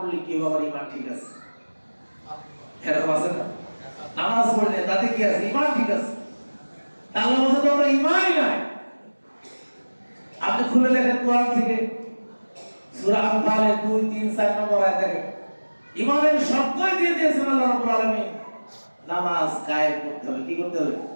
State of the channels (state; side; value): inverted; both; correlation -1.00